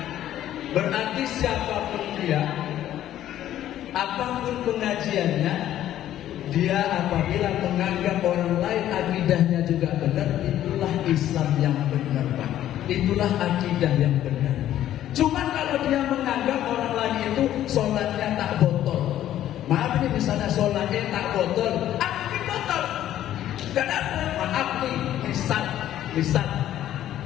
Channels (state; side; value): quieter; right; 12.2 dB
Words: berarti siapapun dia, apapun pengajiannya, dia apabila menganggap orang lain akidahnya juga benar, itulah Islam yang benar, Pak. Itulah akidah yang benar. Cuman kalau dia menganggap orang lain itu sholatnya tak botol, maaf nih, misalnya sholatnya tak botol, aku botol, kenapa? Maaf nih, misal